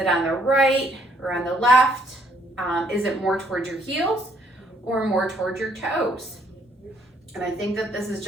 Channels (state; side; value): normal; both; correlation 0.68